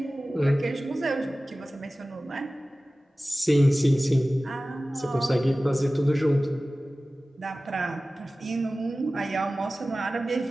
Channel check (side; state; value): both; normal; correlation 0.97